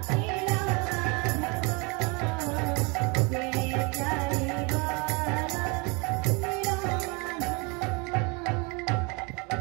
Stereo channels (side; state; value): left; quieter; 30.1 dB